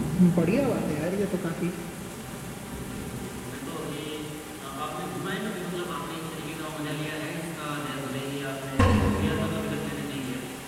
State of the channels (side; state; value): both; identical; correlation 1.00